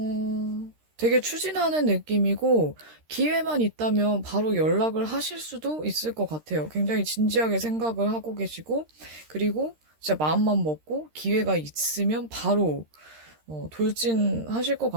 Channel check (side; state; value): left; late; 13 ms